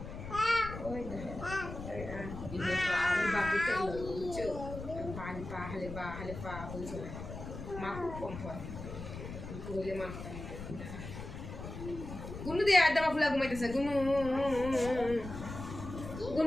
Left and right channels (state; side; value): noise; left; rumble, 9 dB below the sound